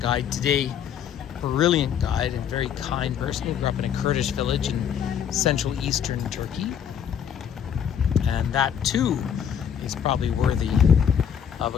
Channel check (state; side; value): quieter; right; 8.5 dB